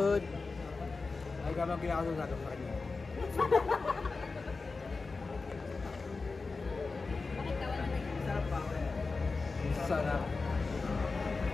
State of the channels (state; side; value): quieter; right; 4.0 dB